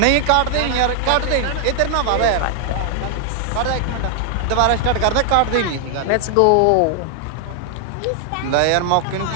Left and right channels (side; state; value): both; different; correlation 0.00